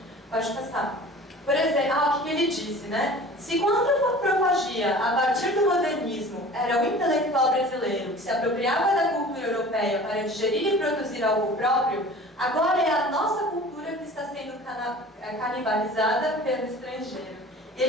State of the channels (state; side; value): normal; both; correlation 0.42